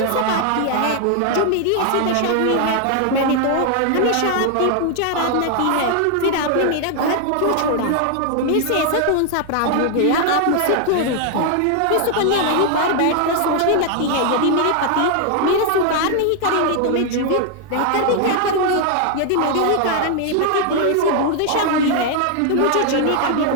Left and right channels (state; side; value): different; both; correlation 0.00